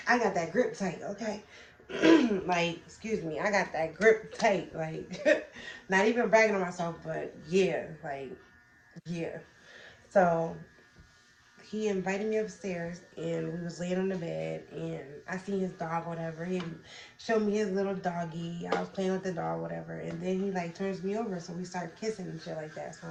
I got that grip tight, okay? Like, excuse me, I got that grip tight. Like, not even bragging on myself, but yeah, like, yeah. So he invited me upstairs, and we was laying on the bed, and I seen his dog, whatever. He showed me his little doggy. I was playing with the dog, whatever. And then he like turns me over, so we start kissing and shit like that. So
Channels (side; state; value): both; identical; correlation 1.00